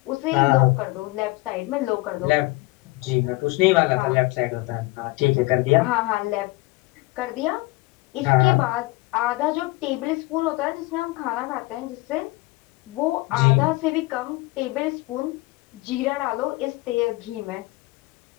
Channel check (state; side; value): quieter; right; 21.9 dB